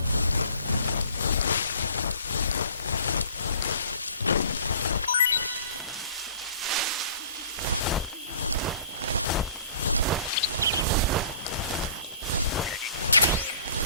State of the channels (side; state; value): both; inverted; correlation -0.50